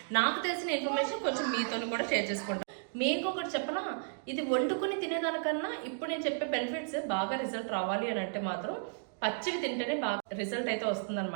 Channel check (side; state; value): left; silent; digital silence